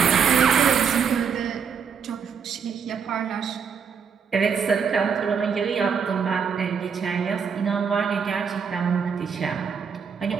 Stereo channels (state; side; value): quieter; left; 6.5 dB